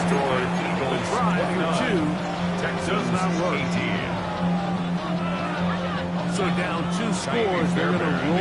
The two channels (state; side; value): identical; both; correlation 1.00